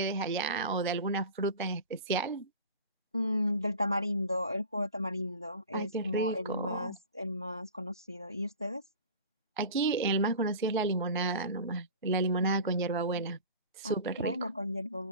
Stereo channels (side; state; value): both; inverted; correlation -0.35